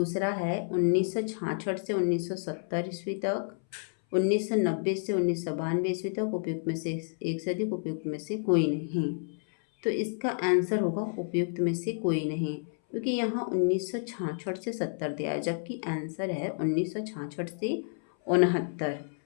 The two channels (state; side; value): silent; right; 58 dB below the other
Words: है 1966 से 1970 ईस्वी तक, 1990 से 1992 ईस्वी तक, उपयुक्त में से एक से अधिक, उपयुक्त में से कोई नहीं। तो इसका आंसर होगा उपयुक्त में से कोई नहीं, क्योंकि यहाँ 1966 से 70 दिया है, जबकि आंसर है 1966 से 69,